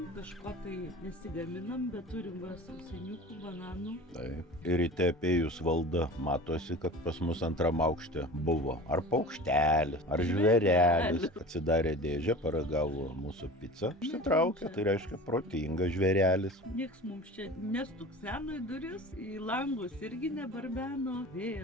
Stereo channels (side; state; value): both; normal; correlation 0.37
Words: kažko tai nesigaminam, bet turim va sausainiukų, bananų. Taip. Ir ryte apėjus valdą matosi, kad pas mus antram aukšte buvo ar paukštelis, ar žvėrelis. Atsidarė dėžę, paragavo mūsų pizzą. Išsitraukė, tai reiškia protingas žvėrelis. Nieks mums čia nestukseno į duris, į langus irgi nebarbeno,